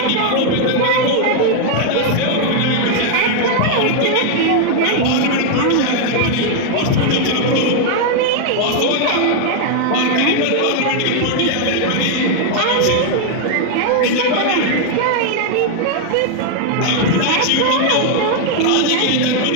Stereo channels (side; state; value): both; different; correlation 0.00